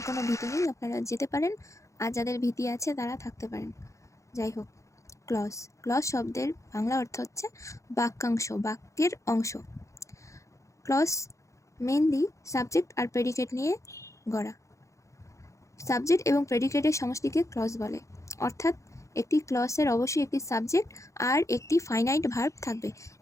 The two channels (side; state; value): right; late; 0.15 ms